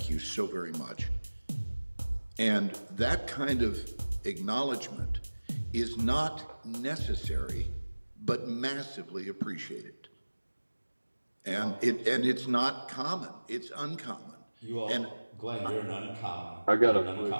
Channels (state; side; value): inverted; both; correlation -1.00